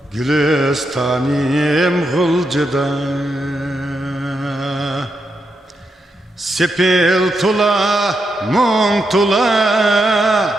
Gülistanim gulcıda. Sepil tula, mung tula,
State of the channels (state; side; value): normal; both; correlation 0.84